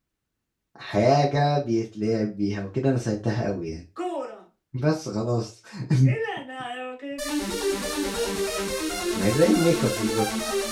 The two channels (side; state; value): both; identical; correlation 1.00